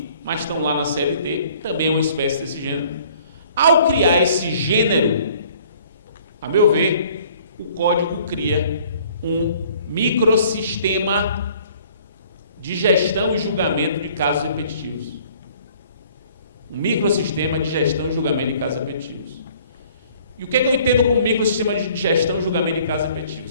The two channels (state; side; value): inverted; both; correlation -0.56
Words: mas estão lá na CLT, também é uma espécie desse gênero. Ao criar esse gênero, a meu ver, o código cria um microsistema de gestão e julgamento de casos repetitivos. Um microsistema de gestão e julgamento de casos repetitivos. E o que eu entendo como microsistema de gestão e julgamento de casos